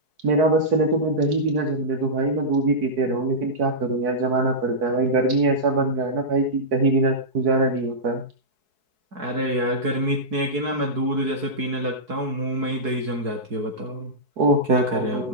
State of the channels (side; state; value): left; late; 4.6 ms